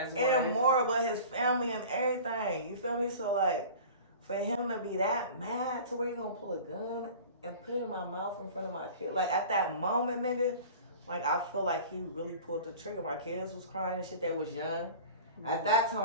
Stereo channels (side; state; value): both; inverted; correlation -0.40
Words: wife. And more, but his family and everything. You feel me? So like, for him to be that mad to where you gonna pull a gun and put it in my mouth in front of my kid, like at that moment, nigga, like I feel like he really pulled the trigger. My kids was crying and shit, they was young. At that